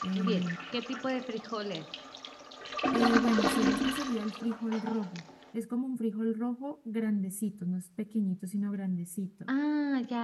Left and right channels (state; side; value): identical; both; correlation 1.00